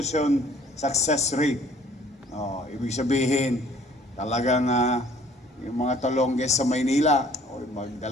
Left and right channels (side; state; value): both; normal; correlation 0.56